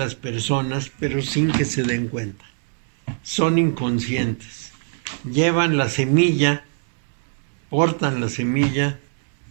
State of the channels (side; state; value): left; silent; digital silence